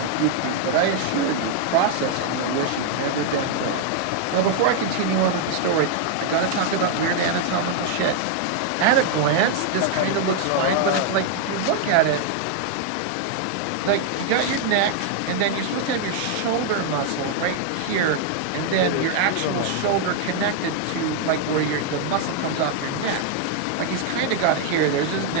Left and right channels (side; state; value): both; different; correlation 0.00